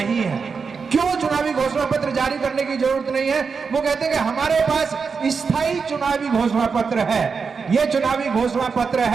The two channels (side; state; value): left; quieter; 5.4 dB